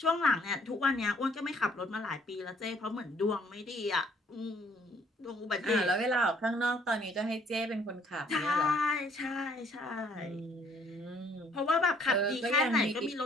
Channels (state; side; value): normal; both; correlation 0.63